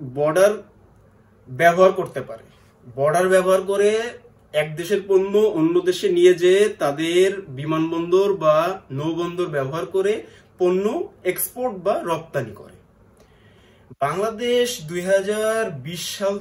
বর্ডার ব্যবহার করতে পারে। বর্ডার ব্যবহার করে এক দেশের পণ্য অন্য দেশে নিয়ে যেয়ে তাদের বিমানবন্দর বা নৌবন্দর ব্যবহার করে পণ্য এক্সপোর্ট বা রপ্তানি করে। বাংলাদেশ 2020 সাল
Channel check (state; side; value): identical; both; correlation 1.00